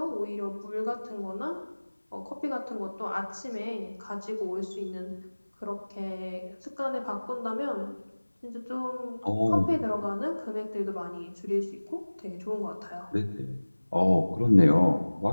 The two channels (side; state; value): both; inverted; correlation -1.00